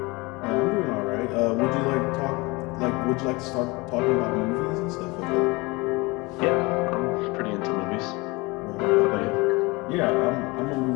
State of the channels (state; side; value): quieter; right; 24.6 dB